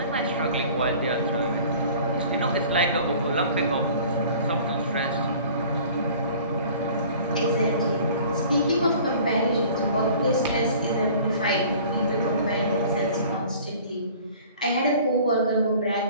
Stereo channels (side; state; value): both; inverted; correlation -0.48